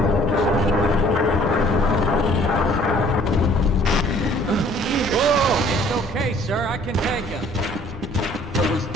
Sir, I can take him. Those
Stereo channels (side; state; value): both; normal; correlation 0.55